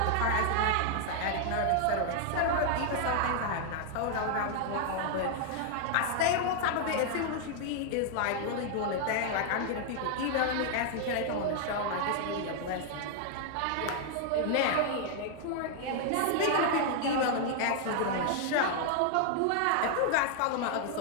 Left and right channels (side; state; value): both; different; correlation 0.00